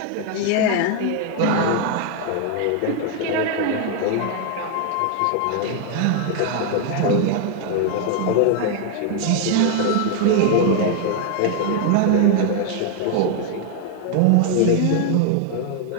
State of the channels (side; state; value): both; different; correlation 0.00